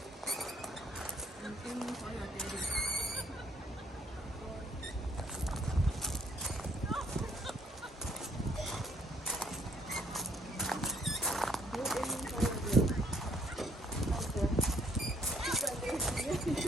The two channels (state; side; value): normal; both; correlation 0.66